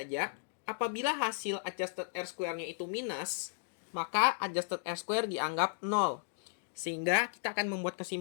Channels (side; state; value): right; silent; digital silence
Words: Apabila hasil adjusted R-square-nya itu minus, maka adjusted R-square dianggap 0. Sehingga kita akan membuat